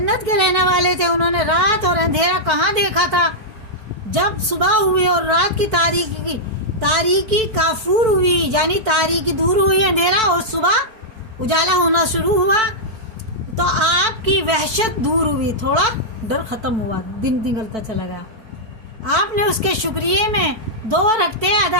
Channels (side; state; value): left; late; 4.5 ms